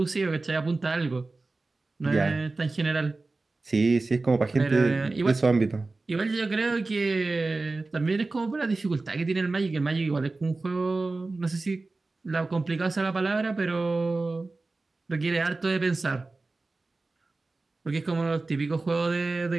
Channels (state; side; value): quieter; left; 3.4 dB